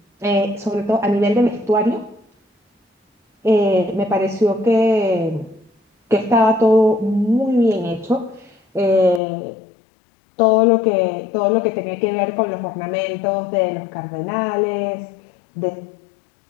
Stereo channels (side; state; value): right; drops out; at 9.2 s